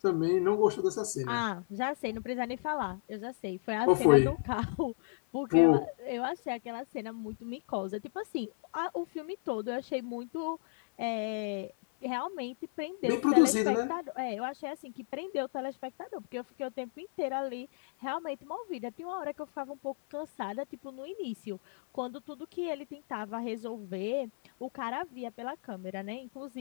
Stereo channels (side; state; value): right; silent; 56 dB below the other